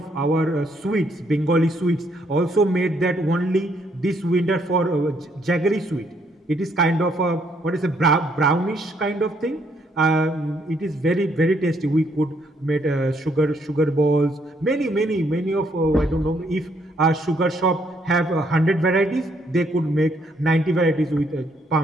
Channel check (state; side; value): normal; both; correlation 0.70